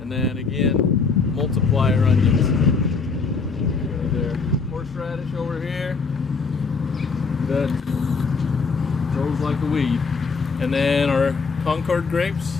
And then again, multiplier onions. Right there. Horseradish over here that grows like a weed. And then our Concord grapes.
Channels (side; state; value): right; quieter; 4.7 dB